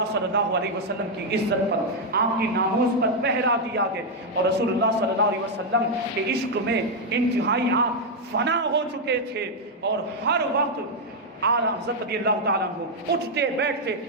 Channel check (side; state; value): both; normal; correlation 0.00